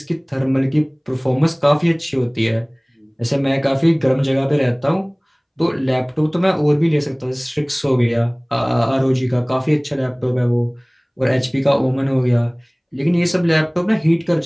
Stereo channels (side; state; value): both; identical; correlation 1.00